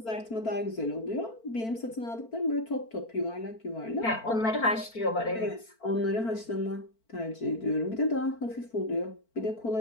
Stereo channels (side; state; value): right; late; 4.5 ms